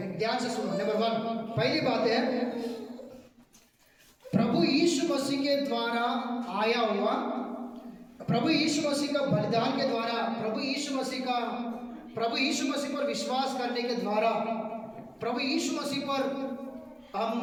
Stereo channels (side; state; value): both; identical; correlation 1.00